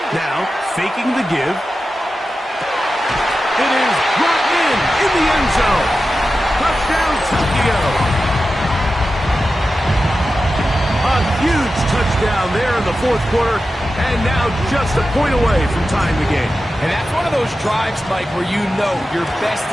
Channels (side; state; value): both; normal; correlation 0.93